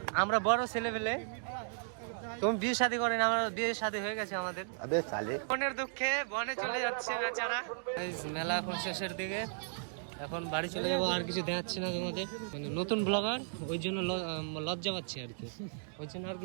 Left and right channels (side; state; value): left; silent; digital silence